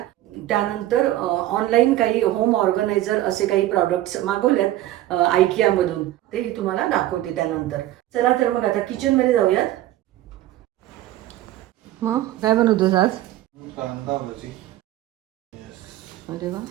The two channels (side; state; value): left; quieter; 14.6 dB